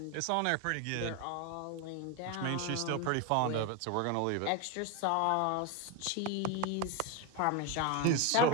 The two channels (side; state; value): both; different; correlation 0.02